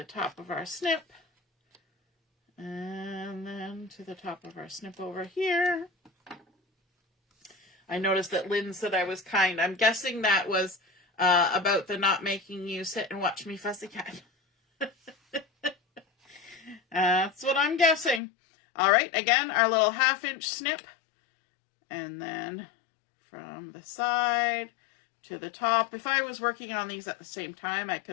top of our snip. And then to the top of our snip over here. I noticed that Lynn said I was kind. I'm guessing that was about the not making you sit and watch me fussy cat. That's what I'm guessing. All right, again, our little 1/2 inch snip. And then from the side to the top. If I was working on these at the same time, I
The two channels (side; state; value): right; drops out; at 18.2 s